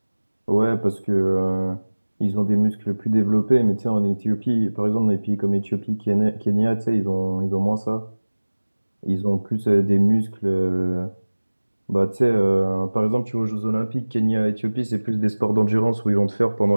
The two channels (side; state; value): both; inverted; correlation -1.00